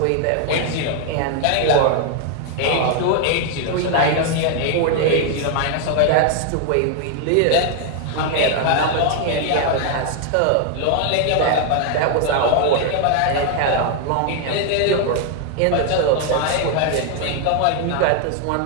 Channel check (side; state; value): both; different; correlation 0.00